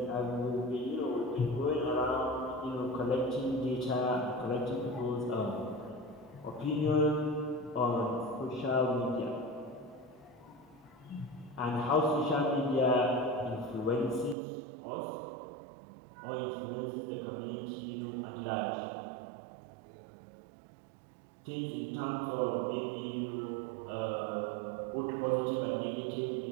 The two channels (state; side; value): drops out; left; at 14.4 s